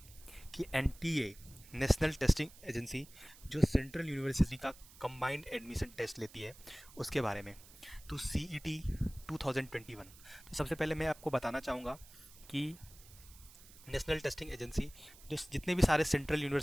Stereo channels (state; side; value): noise; right; hiss, 21 dB below the sound